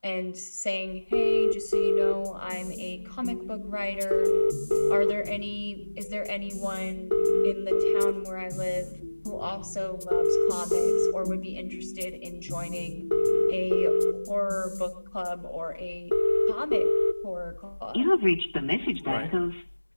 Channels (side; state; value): both; inverted; correlation -1.00